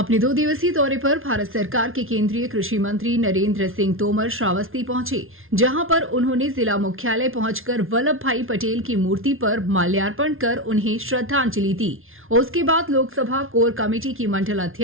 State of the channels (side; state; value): left; late; 0.60 ms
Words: 2 दिवसीय दौरे पर भारत सरकार के केंद्रीय कृषि मंत्री नरेंद्र सिंह तोमर श्रावस्ती पहुंचे, जहां पर उन्होंने जिला मुख्यालय पहुंचकर वल्लभ भाई पटेल की मूर्ति पर माल्यार्पण कर उन्हें श्रद्धांजलि दी। उसके बाद लोकसभा कोर कमेटी की मंडल